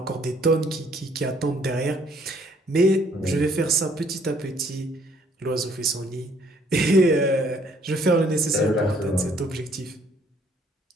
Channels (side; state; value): both; normal; correlation 0.63